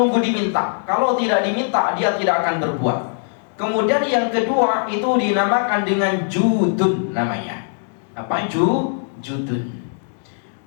diminta. Kalau tidak diminta dia tidak akan berbuat. Kemudian yang kedua itu dinamakan dengan judun namanya. Apa judun?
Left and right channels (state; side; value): silent; right; digital silence